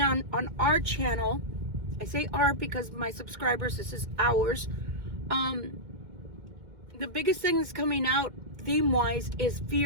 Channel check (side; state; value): left; late; 2.1 ms